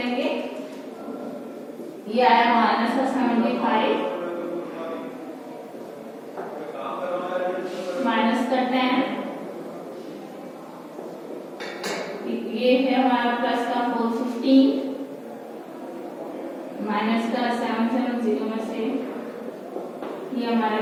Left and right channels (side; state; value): both; identical; correlation 1.00